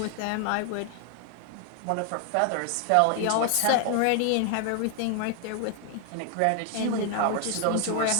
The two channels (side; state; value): both; different; correlation 0.00